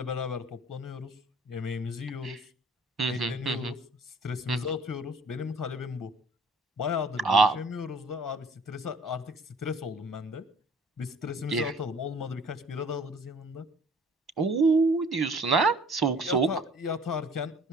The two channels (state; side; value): normal; both; correlation 0.53